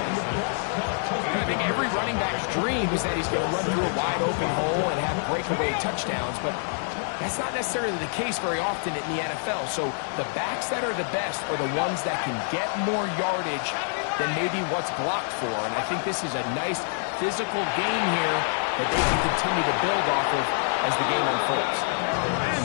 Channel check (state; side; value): silent; right; 61 dB below the other